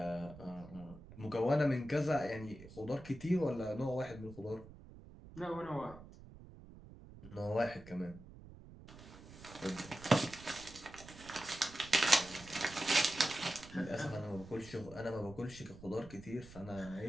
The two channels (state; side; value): noise; right; rumble, 17 dB below the sound